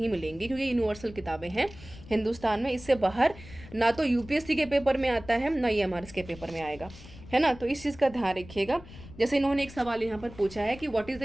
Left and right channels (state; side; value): noise; left; rumble, 17 dB below the sound